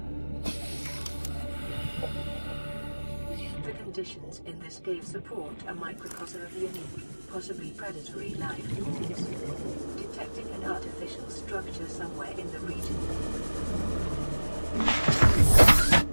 The conditions in this cave support a microcosm of unique, possibly predatory life forms. Detecting an artificial structure somewhere in the region.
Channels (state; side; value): inverted; both; correlation -1.00